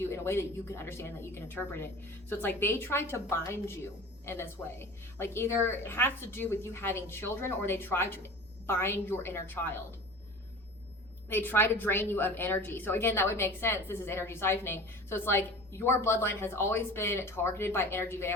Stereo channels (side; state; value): both; normal; correlation 0.38